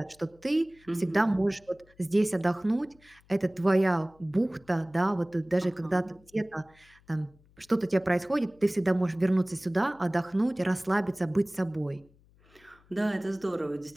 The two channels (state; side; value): noise; left; hum, 30 dB below the sound